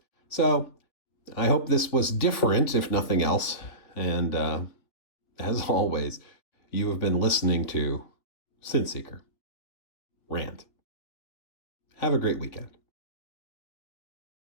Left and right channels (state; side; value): late; right; 3.3 ms